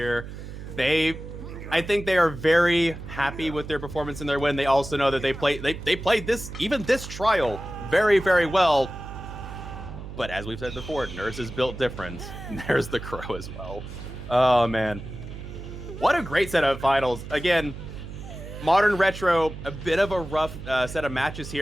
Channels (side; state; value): right; noise; hum, 11 dB below the sound